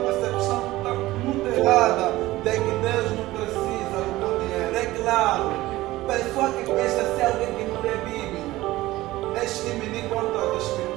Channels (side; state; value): left; quieter; 17.5 dB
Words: muito errada de que Deus não precisa do teu dinheiro. É claro, pessoa que pensa ser alguém que não lê Bíblia, é diminuir quanto às